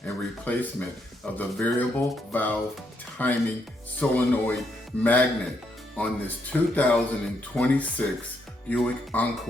and replacement of the variable valve timing solenoid magnet on this 2026 Buick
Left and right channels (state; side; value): normal; both; correlation 0.76